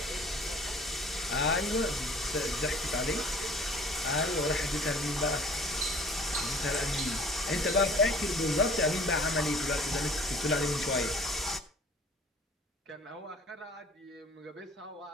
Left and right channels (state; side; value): normal; both; correlation 0.49